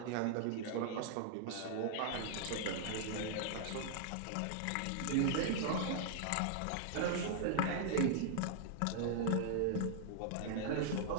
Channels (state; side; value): different; both; correlation -0.01